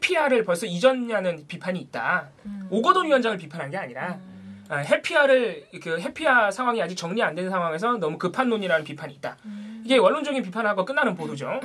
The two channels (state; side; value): identical; both; correlation 1.00